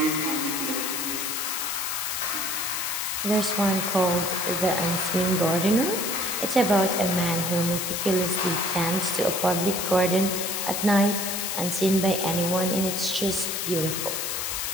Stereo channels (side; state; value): left; noise; hiss, 2 dB below the sound